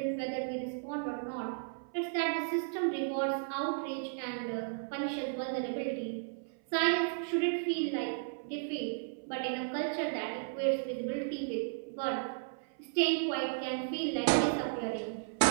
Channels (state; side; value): silent; left; 55 dB below the other